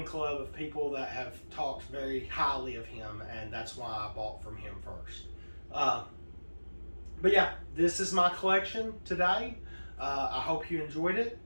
club of people that have talked very highly of him, and that's why I bought from him first. But yeah, this is my collection today. I hope you enjoyed it.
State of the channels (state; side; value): inverted; both; correlation -1.00